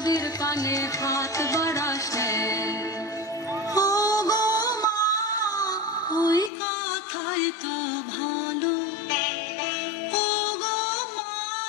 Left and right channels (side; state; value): right; drops out; at 6.5 s